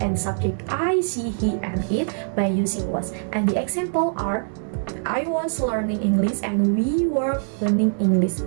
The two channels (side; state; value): left; silent; digital silence